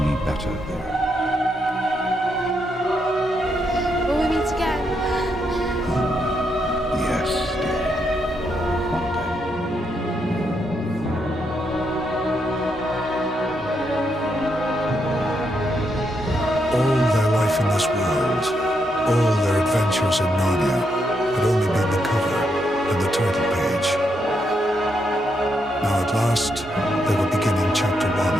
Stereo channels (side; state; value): both; normal; correlation 0.79